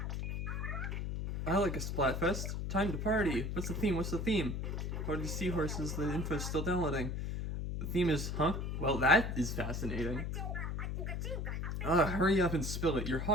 I like a Splatfest. Time to party. What's the theme? What's the theme? Party seahorses, the info's still downloading. The theme is, Well, that is fascinating. Hurry up and spill it. You're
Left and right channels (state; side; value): noise; left; hum, 2 dB below the sound